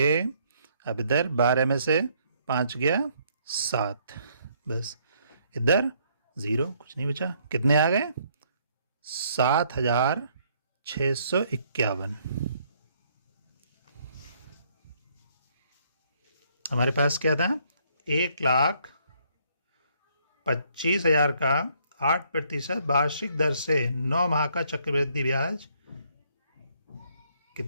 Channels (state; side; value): inverted; both; correlation -0.68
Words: अब इधर 12 में से 5 गया 7, बस इधर 0, कुछ नहीं बचा। कितने आ गए? 7,651। हमारे पास क्या था? 1,25,000 का 8% वार्षिक दर से 9 माह का चक्रवृद्धि ब्याज